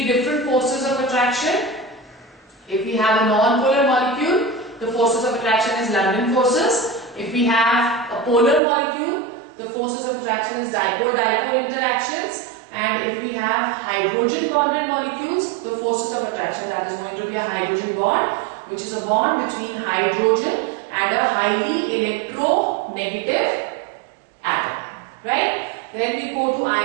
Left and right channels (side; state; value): left; drops out; at 8.6 s